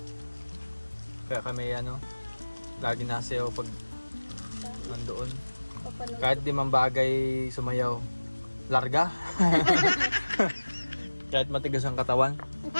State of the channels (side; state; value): both; inverted; correlation -1.00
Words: Kaya kami ano, lagi nasayaw pag nandoon. Papanood. Kahit di man bagay sumayaw, larga. Kahit matigas ang katawan.